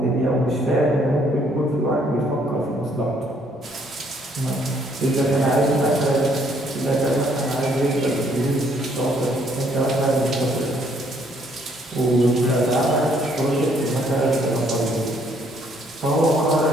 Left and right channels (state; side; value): normal; both; correlation 0.66